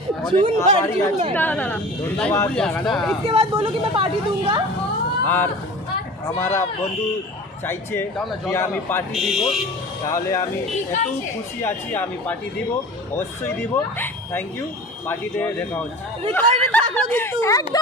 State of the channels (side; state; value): both; normal; correlation 0.38